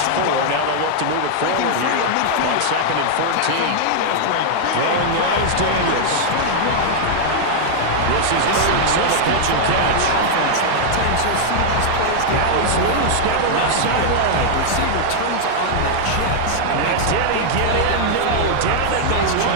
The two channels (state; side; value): different; both; correlation -0.01